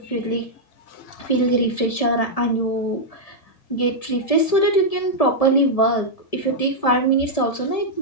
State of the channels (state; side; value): late; right; 1.7 ms